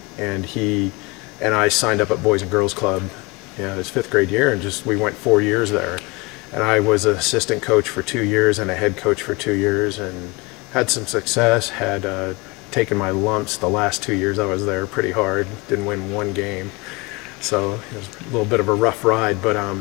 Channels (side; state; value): right; quieter; 26.1 dB